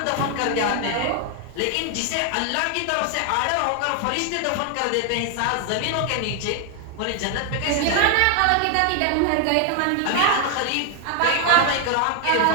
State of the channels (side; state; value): both; different; correlation 0.00